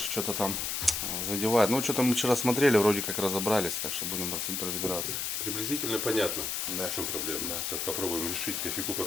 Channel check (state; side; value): noise; left; hiss, 1 dB below the sound